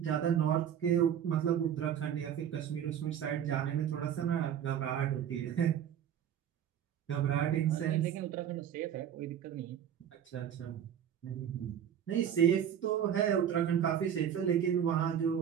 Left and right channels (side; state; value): left; quieter; 9.2 dB